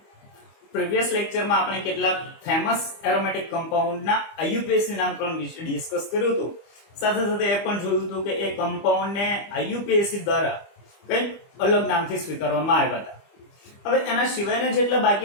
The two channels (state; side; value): late; right; 25 ms